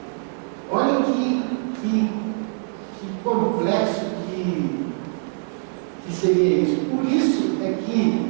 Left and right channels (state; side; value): silent; left; 63 dB below the other